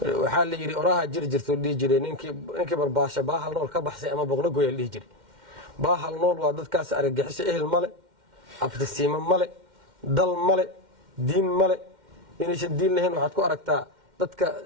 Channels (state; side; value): late; left; 2.1 ms